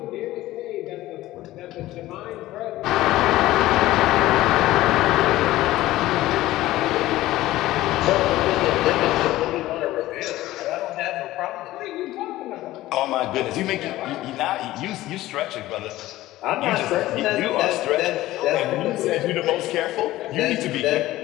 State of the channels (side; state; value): right; quieter; 16.2 dB